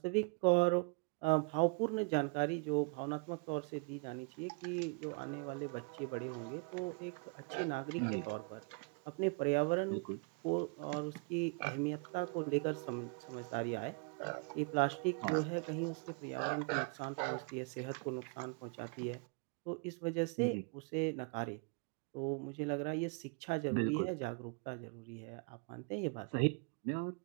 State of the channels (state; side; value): quieter; left; 33.3 dB